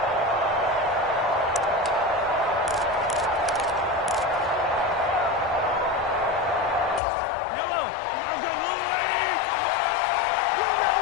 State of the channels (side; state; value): right; drops out; at 7.0 s